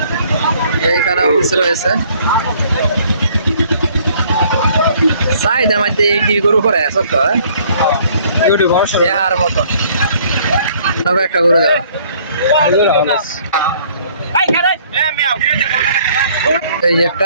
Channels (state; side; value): inverted; both; correlation -0.60